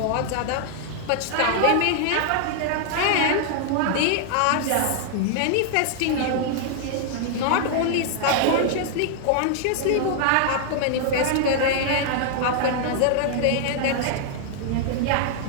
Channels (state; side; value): different; both; correlation 0.00